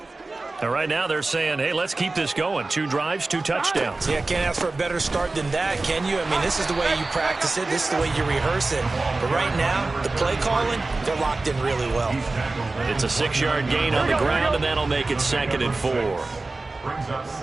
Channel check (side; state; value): left; quieter; 3.3 dB